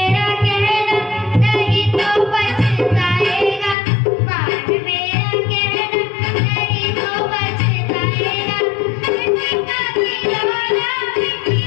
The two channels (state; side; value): drops out; right; at 3.8 s